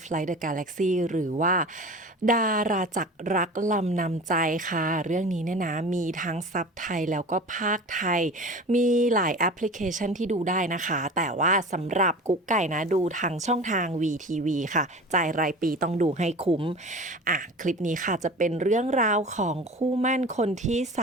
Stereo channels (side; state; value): both; normal; correlation 0.36